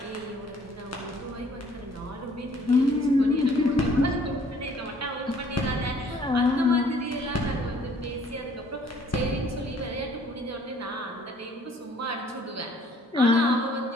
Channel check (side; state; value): both; normal; correlation 0.59